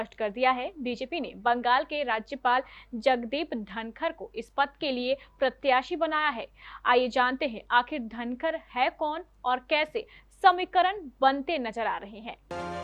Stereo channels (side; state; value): both; identical; correlation 1.00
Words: कर दिया है। बीजेपी ने बंगाल के राज्यपाल जगदीप धनखड़ को इस पद के लिए प्रत्याशी बनाया है। आइए जानते हैं आखिर धनखड़ है कौन और कैसे समीकरण बनते नजर आ रहे हैं।